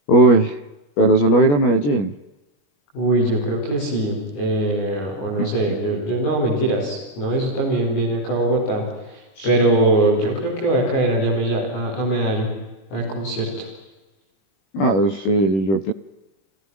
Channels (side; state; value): right; late; 21 ms